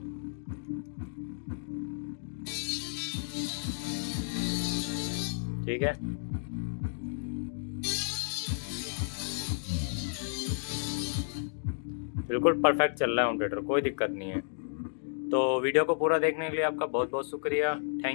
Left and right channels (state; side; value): silent; right; digital silence